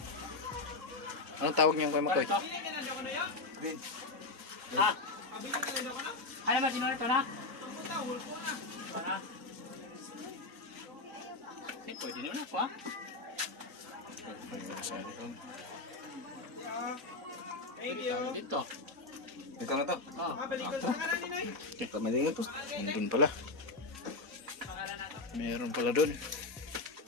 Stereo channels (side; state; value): right; quieter; 3.3 dB